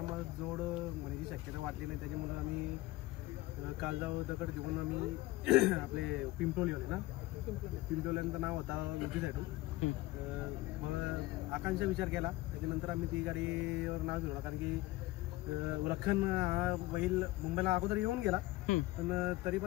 जोड म्हणण्याची शक्यता वाटली नाही, त्याच्यामुळे आम्ही कालजाव दगड घेऊन आम्ही आपले पिंपळी होते ना, पिंपळ्यांचं नाव होता उजवी साईडून। मग आकांक्षा विचार केला, त्याच्यानंतर आम्ही ती गाडीवर नाव घेऊन, कारण की लखन हा बैल मुंबईला अगोदर येऊन गेला, पण तरी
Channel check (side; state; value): right; quieter; 18.7 dB